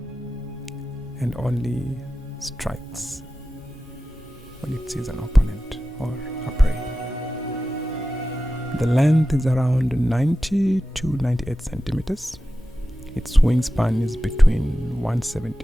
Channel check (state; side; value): normal; both; correlation 0.94